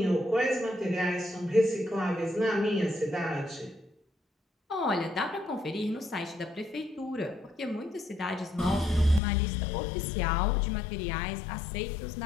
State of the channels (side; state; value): right; drops out; at 9.2 s